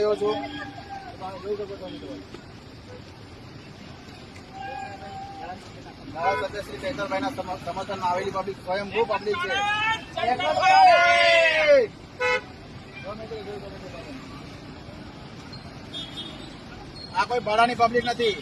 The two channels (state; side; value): identical; both; correlation 1.00